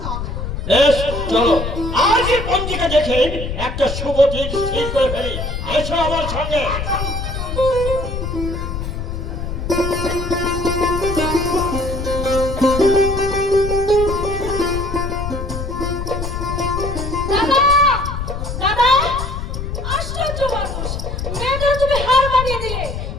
হবে না। বেশ, চলো আজই পঞ্জিকা দেখে একটা শুভ দিন ঠিক করে ফেলি। এসো আমার সঙ্গে। দাদা, দাদা, আশ্চর্য মানুষ, মেয়েদের তুমি হার মানিয়ে দিলে।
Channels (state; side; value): noise; left; rumble, 5 dB below the sound